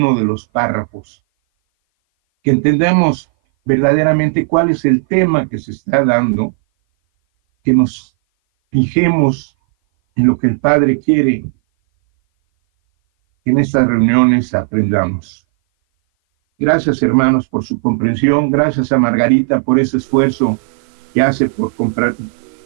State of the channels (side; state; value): left; silent; 58 dB below the other